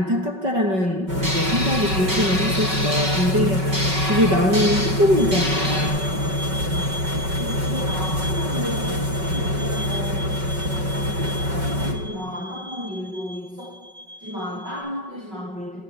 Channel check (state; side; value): late; left; 5.3 ms